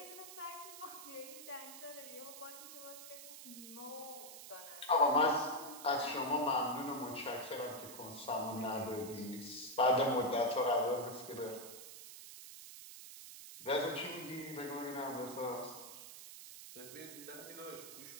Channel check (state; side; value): noise; right; hiss, 12 dB below the sound